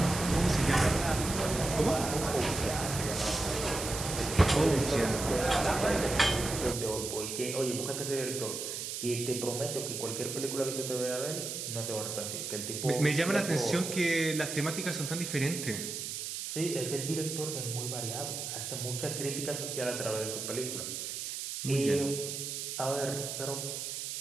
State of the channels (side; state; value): right; noise; hiss, 5 dB below the sound